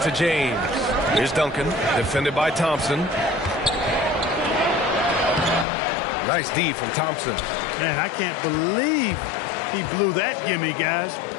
to James. Here's Duncan, defended by Thompson. Nice D from Thompson. Man, I can't believe he blew that gimme, guys.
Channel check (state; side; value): drops out; right; at 5.7 s